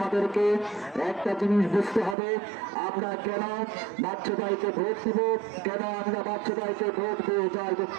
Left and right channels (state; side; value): drops out; left; at 2.1 s